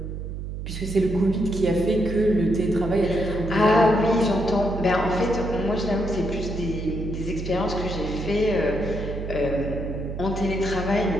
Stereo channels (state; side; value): noise; right; hum, 6 dB below the sound